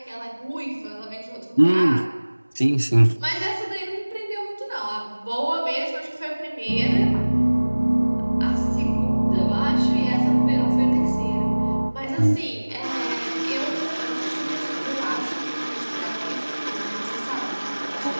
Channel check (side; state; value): both; inverted; correlation -1.00